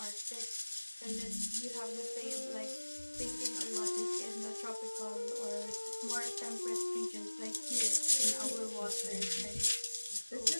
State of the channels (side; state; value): both; inverted; correlation -1.00